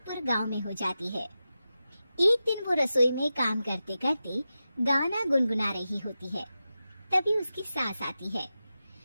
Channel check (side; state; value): both; inverted; correlation -0.92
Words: गांव में हो जाती है। एक दिन वो रसोई में काम करते करते गाना गुनगुना रही होती है। तभी उसकी सास आती है।